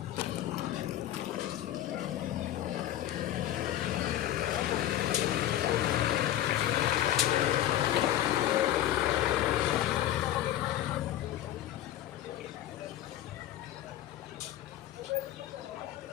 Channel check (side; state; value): right; quieter; 12.7 dB